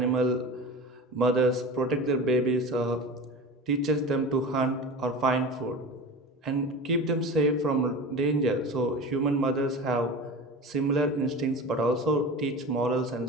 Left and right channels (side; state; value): both; normal; correlation 0.31